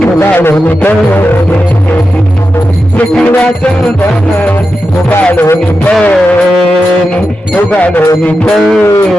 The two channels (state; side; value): normal; both; correlation 0.90